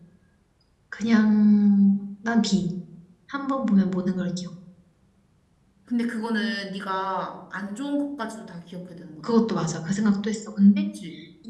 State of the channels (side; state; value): both; identical; correlation 1.00